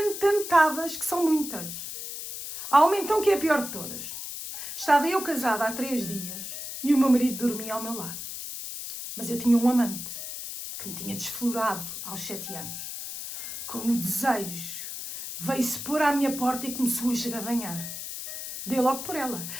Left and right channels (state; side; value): noise; left; hiss, 8 dB below the sound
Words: que são muitas. Há uma então que é a pior de todas. Estava eu casada há 3 dias e o meu marido dormia ao meu lado. Mas eu tinha um amante que me tinha desflorado aos 7 anos. Com o desejo, veio-se pôr à minha porta e começou a esgadanhar. Dei logo por ela.